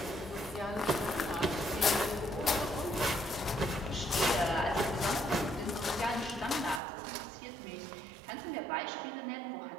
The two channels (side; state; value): left; drops out; at 6.8 s